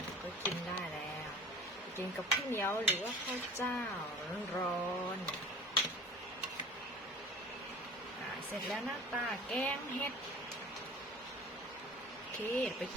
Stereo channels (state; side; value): normal; both; correlation 0.43